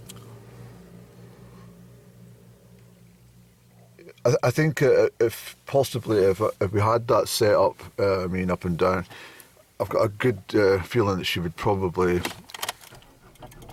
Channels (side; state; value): both; identical; correlation 1.00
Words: I think if we had that set up, Up and Down, I've got a good feeling that she would probably